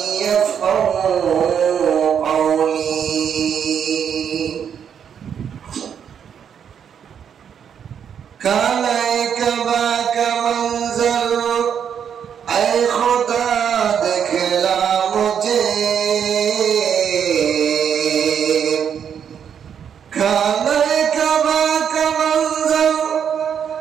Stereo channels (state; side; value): quieter; left; 8.1 dB